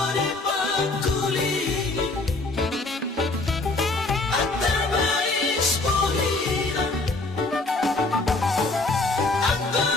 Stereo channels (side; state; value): right; quieter; 3.2 dB